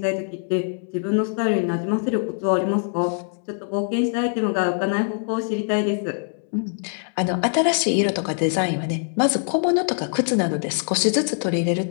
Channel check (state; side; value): silent; right; 63 dB below the other